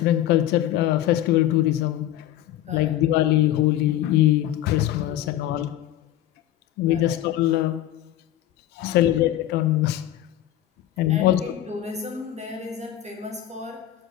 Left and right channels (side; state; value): right; quieter; 13.0 dB